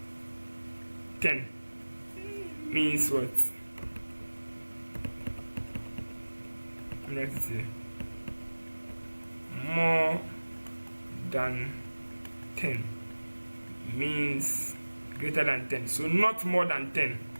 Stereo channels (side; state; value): both; inverted; correlation -1.00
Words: 10 means what? Let's see. More than 10 means greater than 10. So not more than 10.